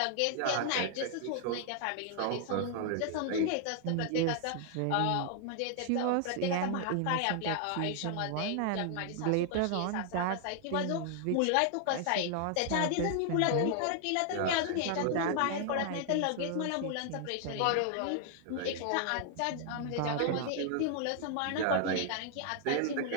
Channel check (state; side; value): different; both; correlation 0.00